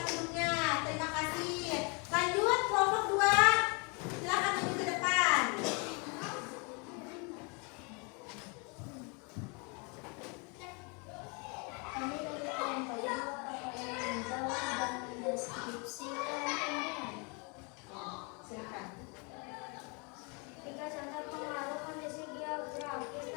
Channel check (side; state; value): right; quieter; 32.8 dB